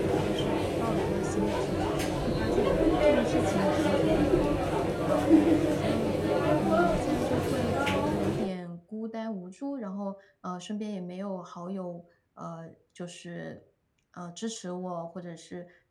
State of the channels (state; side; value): identical; both; correlation 1.00